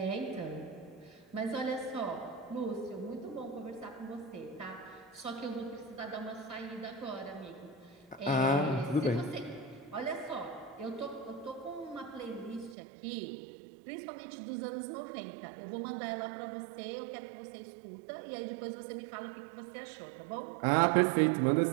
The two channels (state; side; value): drops out; left; at 12.8 s